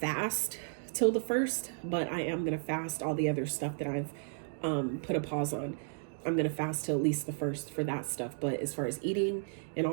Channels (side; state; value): left; silent; digital silence